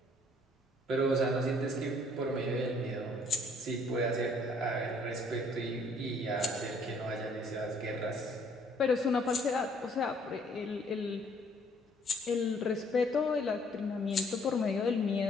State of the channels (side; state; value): both; normal; correlation 0.62